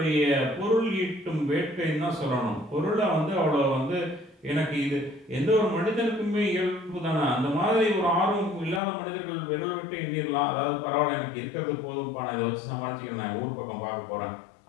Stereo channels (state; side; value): drops out; right; at 8.8 s